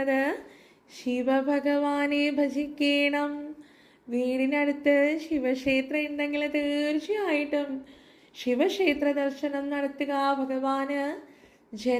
ശിവഭഗവാനെ ഭജിക്കണം. വീടിനടുത്ത് ശിവക്ഷേത്രം ഉണ്ടെങ്കിൽ തീർച്ചയായിട്ടും ശിവക്ഷേത്ര ദർശനം നടത്തുക. ഭഗവാന്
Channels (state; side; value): identical; both; correlation 1.00